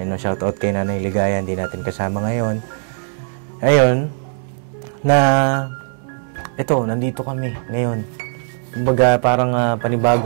shout out kay Nanay Ligaya, hindi natin kasama ngayon. Ayun, na ito, nandito kami ngayon. Kumbaga parang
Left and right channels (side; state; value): left; silent; digital silence